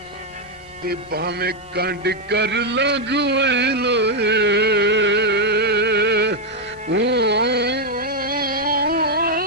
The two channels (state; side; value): normal; both; correlation 0.01